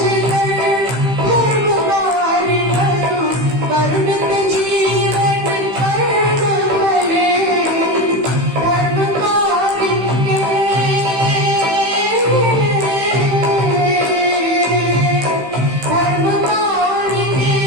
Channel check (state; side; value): late; left; 15 ms